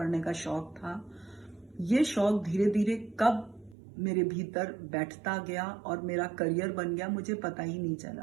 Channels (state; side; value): drops out; left; at 3.8 s